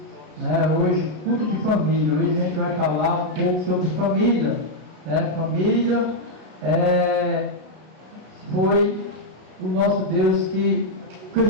né? Hoje, culto de família. Hoje a gente vai falar um pouco sobre família, né? Família foi o nosso Deus que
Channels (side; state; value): left; late; 33 ms